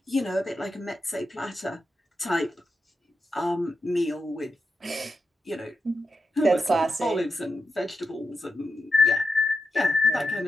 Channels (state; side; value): normal; both; correlation 0.88